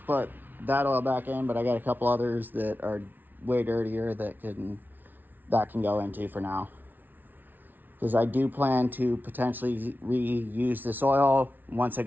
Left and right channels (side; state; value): left; late; 0.087 ms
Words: put that oil back in, but I got a couple others that are way dirtier that can go into for now. Because I do plan to potentially reuse this oil once I